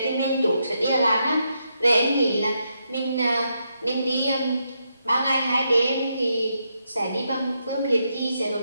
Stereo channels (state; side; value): inverted; both; correlation -0.81